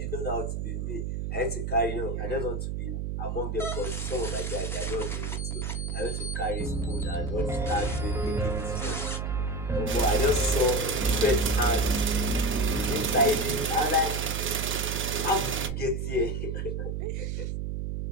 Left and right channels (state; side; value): noise; right; hum, 2 dB below the sound